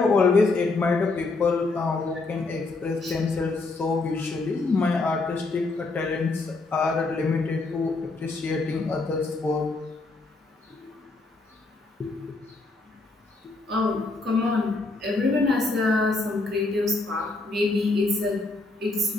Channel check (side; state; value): right; quieter; 3.5 dB